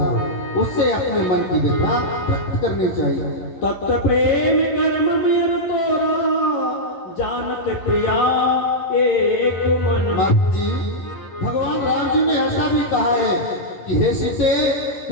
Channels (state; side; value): late; right; 11 ms